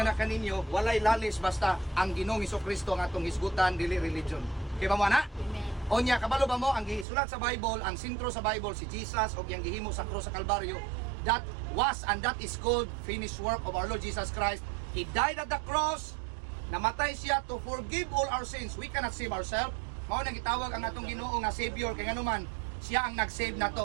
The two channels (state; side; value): drops out; left; at 7.1 s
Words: na kaninyo walay lalis basta ang Ginoong Hesukristo ang atong hisgutan dili religion. Kay ba mo ana? Onya kabalo ba mo ang gisulat sa Bible, ang sentro sa Bible si Jesus og yang gihimo sa krus sa Kalbaryo. That was and that is called finished work of our Lord Jesus Christ. He died at the cross. Namatay siya to forgive all our sins. We cannot save ourselves. Mao nang gitawag ang atong Ginoo nga Savior kay nganuman siya ang nag-save